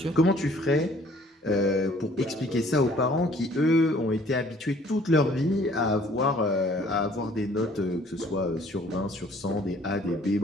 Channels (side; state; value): both; normal; correlation 0.57